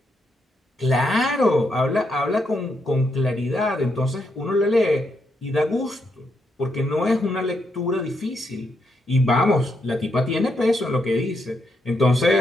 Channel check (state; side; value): normal; both; correlation 0.80